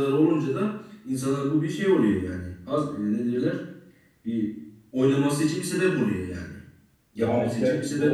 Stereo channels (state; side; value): identical; both; correlation 1.00